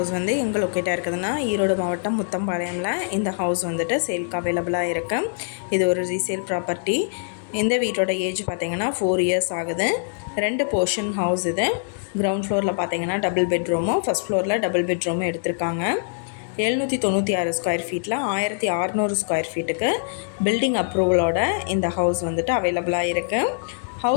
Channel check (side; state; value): right; silent; digital silence